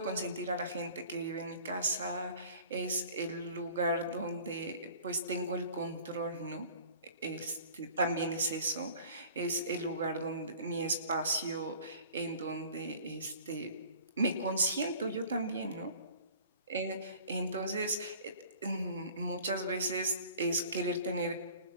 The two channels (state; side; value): inverted; both; correlation -0.48